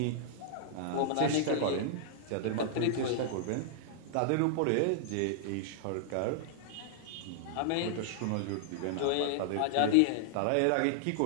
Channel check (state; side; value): different; both; correlation -0.01